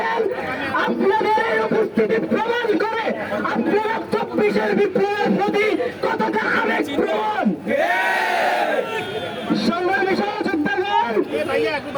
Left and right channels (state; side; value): identical; both; correlation 1.00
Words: আপনাদের এই উপস্থিতি প্রমাণ করে আপনারা 24-এর বিপ্লবের প্রতি কতটা আবেগ প্রবণ। সংগ্রামী সহযোদ্ধাগণ,